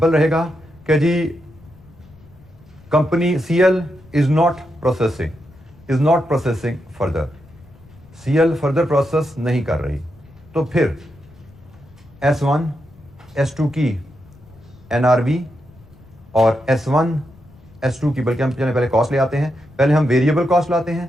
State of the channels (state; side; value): noise; left; rumble, 25 dB below the sound